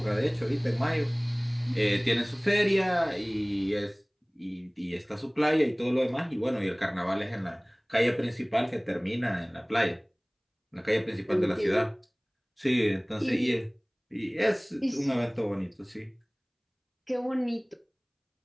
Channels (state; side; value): identical; both; correlation 1.00